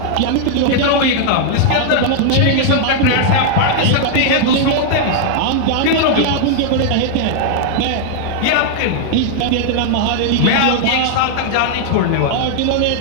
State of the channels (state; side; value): different; both; correlation -0.01